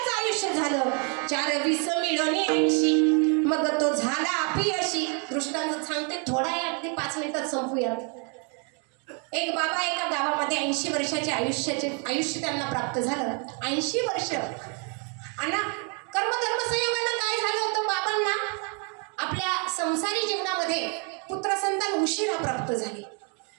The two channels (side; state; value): left; quieter; 37.3 dB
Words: आयुष्य झालं. 4 मिळवणे 80. मग तो झाला अपयशी. दृष्टांत सांगते थोडा आहे अगदी 5 मिनिटात संपूयात. एक बाबा एका गावामध्ये 80 वर्षाचे आयुष्य त्यांना प्राप्त झालं. 80 वर्ष. आणि कर्मधर्म संयोगानं काय झालं होतं बाबांना आपल्या संसारी जीवनामध्ये पुत्रसंतान उशिरा प्राप्त झाले.